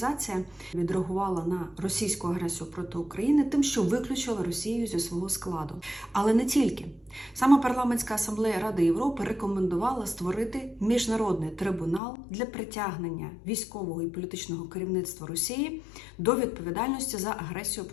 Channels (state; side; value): drops out; right; at 12.0 s